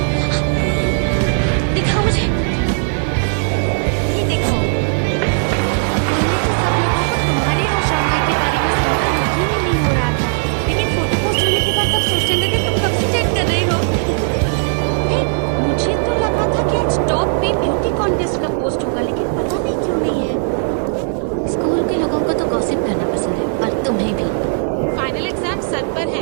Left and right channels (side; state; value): left; silent; 56 dB below the other